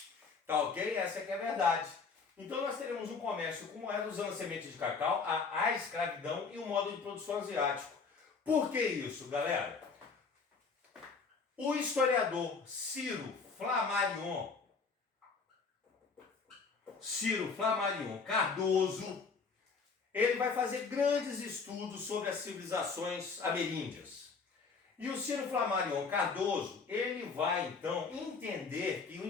Tá ok? Essa é que é a verdade. Então nós teremos um comércio com moeda usando a semente de cacau, a escravidão e o modo de produção asiático. Por que isso, galera? O historiador Ciro Flammarion Cardoso, ele vai fazer grandes estudos sobre as civilizações ameríndias. E o Ciro Flammarion Cardoso, ele vai então entender que o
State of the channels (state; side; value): quieter; right; 4.9 dB